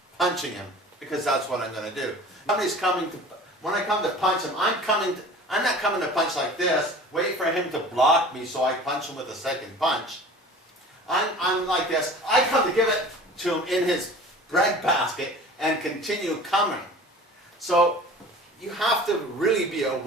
punching him, because that's what I'm going to do. Somebody's coming to, when I come to punch him, I'm not coming to punch like this, wait for him to block me so I punch him with a second punch. I'm like this. I come to give it to him in his breadbasket and continue coming. So you have to really be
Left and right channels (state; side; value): normal; both; correlation 0.42